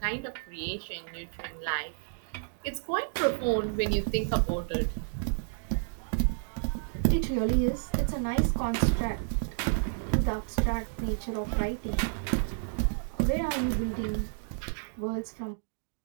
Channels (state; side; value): silent; left; digital silence